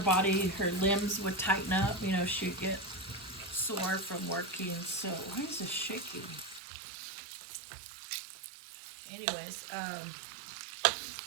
her limbs would tighten up. You know, she'd get sore from working. So why is this shaking? Anyways, the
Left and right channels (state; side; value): drops out; left; at 6.6 s